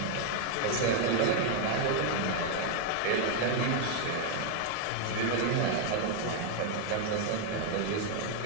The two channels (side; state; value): both; different; correlation 0.00